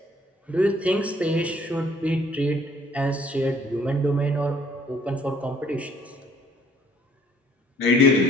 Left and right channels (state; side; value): normal; both; correlation 0.60